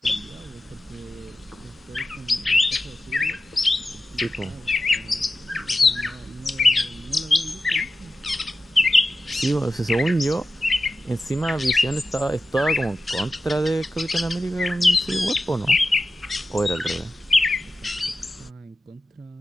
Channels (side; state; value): both; normal; correlation 0.94